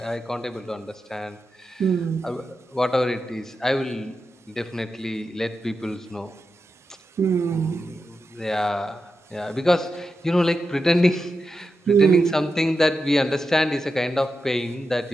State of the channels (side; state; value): both; normal; correlation 0.89